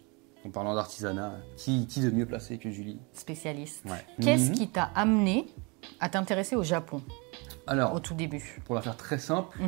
En parlant d'artisanat, qui de mieux placé que Julie? Spécialiste. Ouais. Qu'est-ce qui t'a amené à t'intéresser au Japon? Alors, au tout début. Pour la faire très simple,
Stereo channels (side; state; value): left; quieter; 29.6 dB